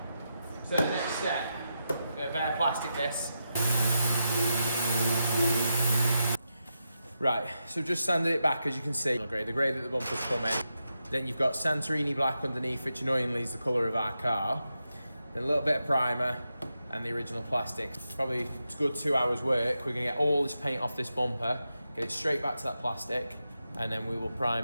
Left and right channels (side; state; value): both; inverted; correlation -0.86